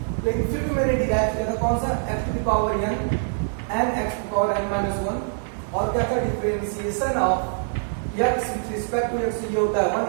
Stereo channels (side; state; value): left; silent; digital silence